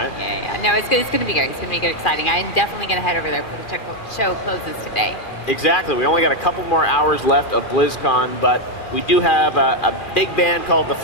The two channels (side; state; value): right; late; 2.4 ms